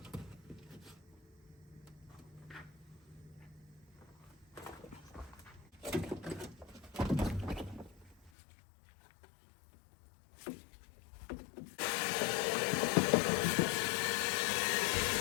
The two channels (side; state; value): right; drops out; at 8.3 s